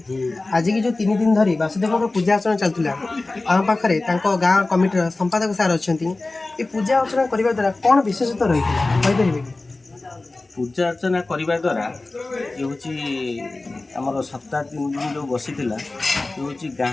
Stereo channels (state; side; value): quieter; right; 3.2 dB